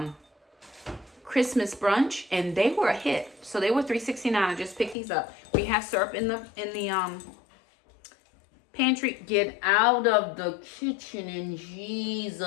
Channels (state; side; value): drops out; right; at 5.0 s